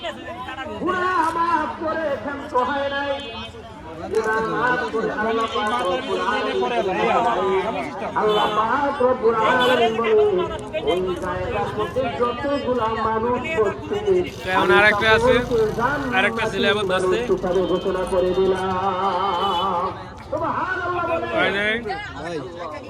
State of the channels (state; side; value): identical; both; correlation 1.00